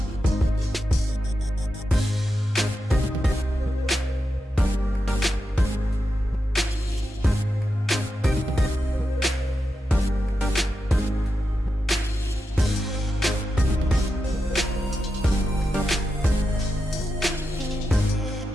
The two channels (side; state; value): both; normal; correlation 0.88